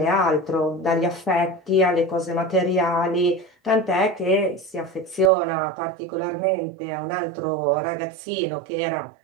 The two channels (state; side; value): drops out; left; at 5.3 s